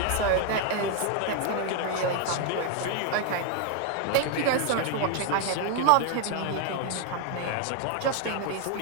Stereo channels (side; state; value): both; different; correlation 0.01